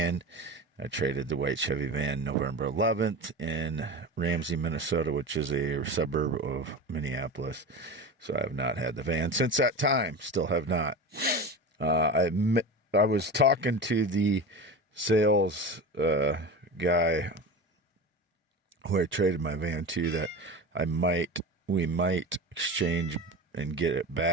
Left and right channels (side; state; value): both; normal; correlation 0.28